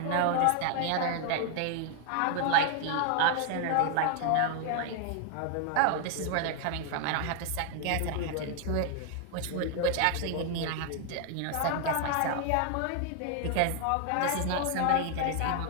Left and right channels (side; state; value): both; different; correlation 0.00